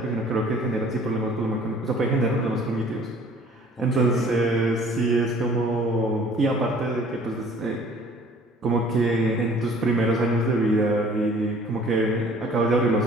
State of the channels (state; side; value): normal; both; correlation 0.53